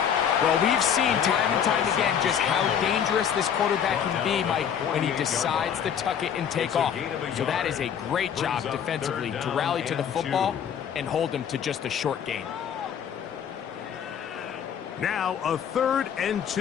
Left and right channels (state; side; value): quieter; right; 8.3 dB